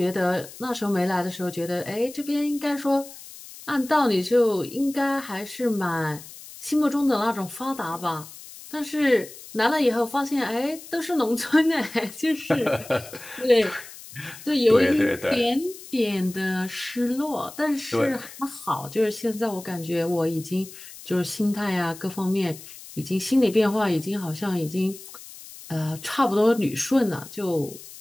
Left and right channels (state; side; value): noise; left; hiss, 16 dB below the sound